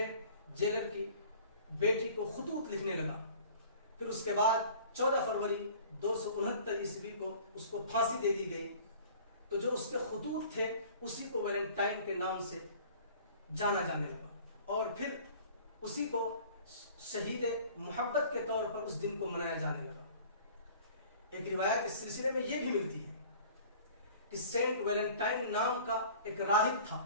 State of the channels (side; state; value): both; inverted; correlation -0.48